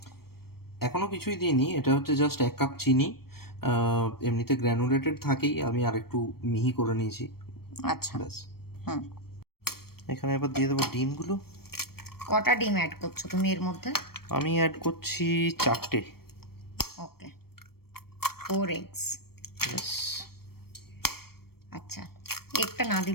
এখনো কিছুই দিইনি, এটা হচ্ছে জাস্ট 1 কাপ চিনি। এমনিতে গ্র্যানুলেটেড থাকেই, আমি আরেকটু মিহি করে নিয়েছি। আচ্ছা। ব্যাস। হুম। এখানে এবার দিয়ে দেবো ডিমগুলো। কটা ডিম অ্যাড করছো তুমি এর মধ্যে? আমি অ্যাড করছি 4টে। ওকে, 4 eggs। ব্যাস। আচ্ছা, একটা না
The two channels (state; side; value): late; right; 0.94 ms